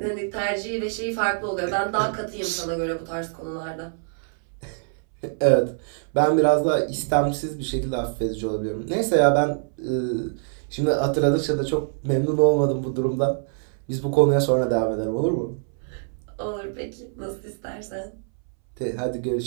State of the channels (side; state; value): left; silent; 62 dB below the other